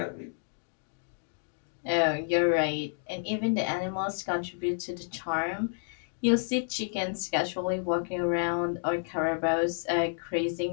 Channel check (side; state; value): right; silent; digital silence